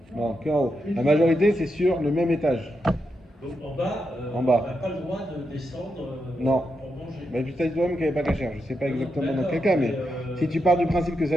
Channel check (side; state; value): both; normal; correlation 0.85